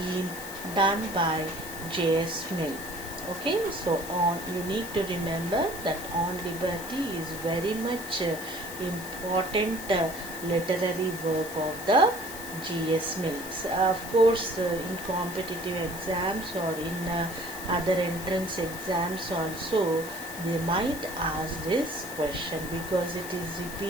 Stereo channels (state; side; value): noise; left; hiss, 12 dB below the sound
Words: done by J.S. Mill. Okay, so on, you need to remember that On Liberty is very much important literary work of the G.S. Mills. Of course, in competitive exams or in other entrance exams also, they might ask this question, because it is